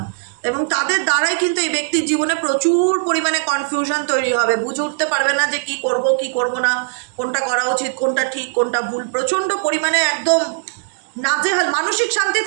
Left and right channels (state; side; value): silent; left; digital silence